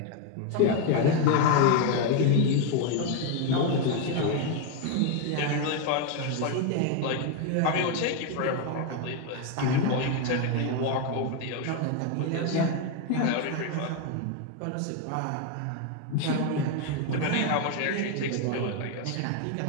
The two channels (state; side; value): different; both; correlation 0.01